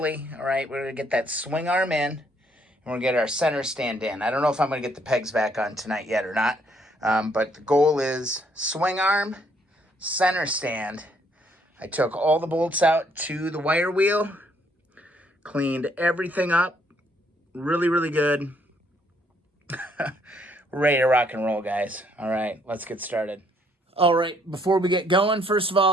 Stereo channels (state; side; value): normal; both; correlation 0.68